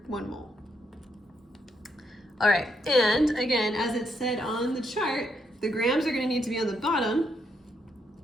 1 mole. All right, and again, as it said on the chart, the grams are going to need to be on the bottom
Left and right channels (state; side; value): normal; both; correlation 0.76